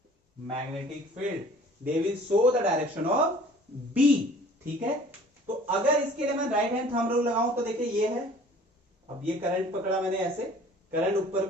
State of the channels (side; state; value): both; normal; correlation 0.50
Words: magnetic field, they will show the direction of B, ठीक है। तो अगर इसके लिए मैं राइट हैंड थंब रूल लगाऊं तो देखिए ये है, अब ये करंट पकड़ा मैंने ऐसे, करंट ऊपर